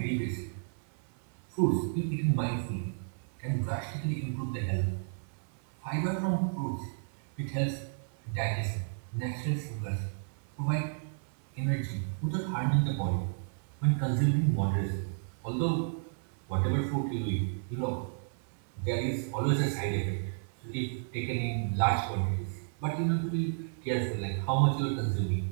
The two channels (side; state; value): left; silent; 56 dB below the other